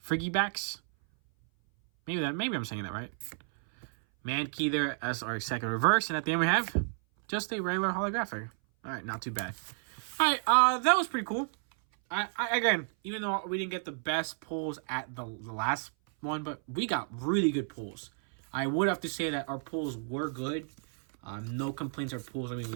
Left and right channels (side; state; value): left; silent; 57 dB below the other